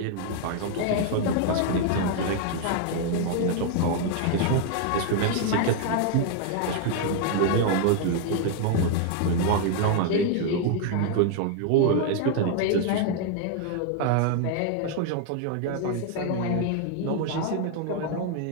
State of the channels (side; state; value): both; different; correlation 0.00